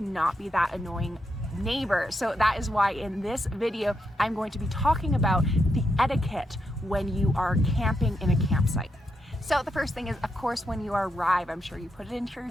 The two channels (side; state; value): both; normal; correlation 0.82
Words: not be that annoying neighbor. So that is why in this video I'm going to be talking about the etiquette when you are camping in a campsite. So the first thing is, of course, when you arrive, I'm sure you put it into your